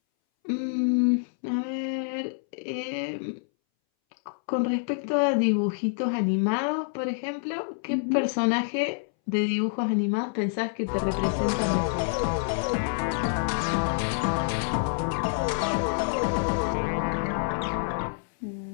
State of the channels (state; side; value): silent; right; 60 dB below the other